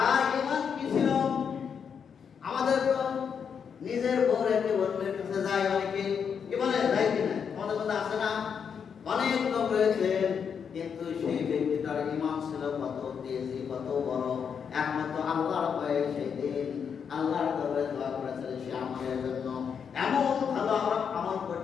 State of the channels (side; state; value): right; quieter; 7.0 dB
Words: ঈমান কি ছিল আমাদের তো নিজের বউ রেখে অন্যের কাছে যায় অনেকে কি বলে যায় কিনা আমাদের মধ্যে আছে না অনেক লোক রয়েছে কিন্তু সেই ব্যক্তিটার ঈমান ছিল কত তেজি কত বড় একমাত্র আল্লাহর ভয়ে সেই দিন আল্লাহর দরবারে দোয়া করেছিল সে আমাদের জন্য এমন ভালো আমরা আমল